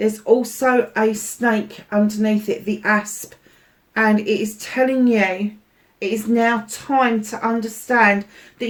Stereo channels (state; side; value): identical; both; correlation 1.00